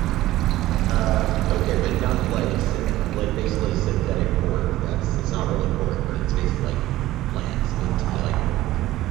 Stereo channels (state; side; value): quieter; left; 15.6 dB